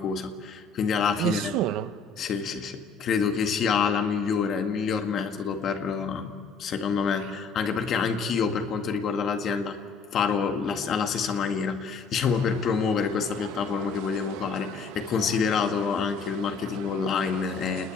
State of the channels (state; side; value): quieter; right; 4.8 dB